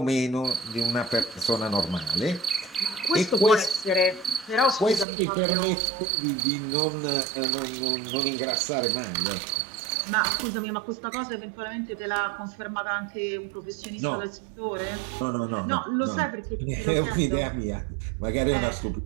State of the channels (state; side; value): drops out; left; at 5.1 s